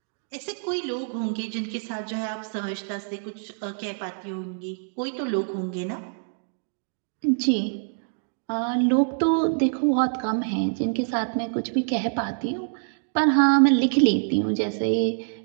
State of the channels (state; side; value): silent; left; digital silence